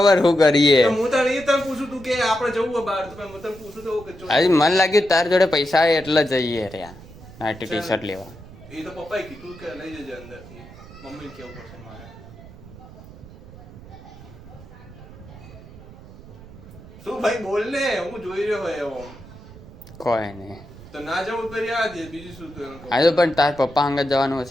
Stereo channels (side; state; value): right; noise; rumble, 18 dB below the sound